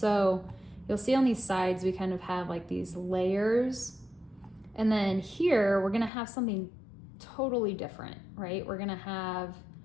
you'll see on these sides, we kind of have like these layers, And then here, we're gonna have something totally different, right? We're gonna have,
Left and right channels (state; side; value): drops out; right; at 6.1 s